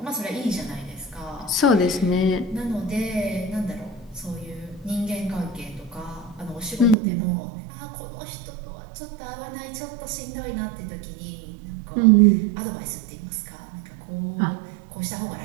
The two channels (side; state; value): left; drops out; at 7.0 s